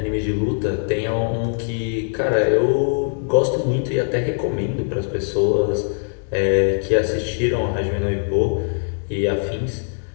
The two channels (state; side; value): silent; right; 59 dB below the other